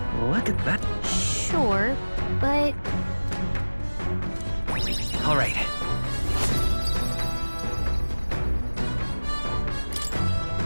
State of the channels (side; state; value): both; inverted; correlation -1.00